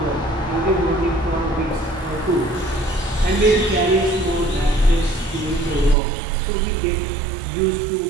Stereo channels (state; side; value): drops out; left; at 6.0 s